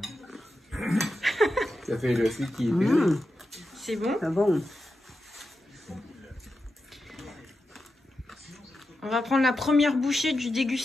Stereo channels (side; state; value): both; normal; correlation 0.90